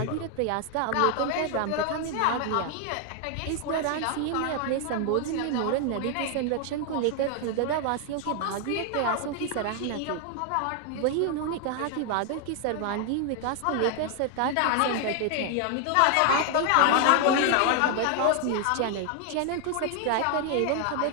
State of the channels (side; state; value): both; different; correlation 0.00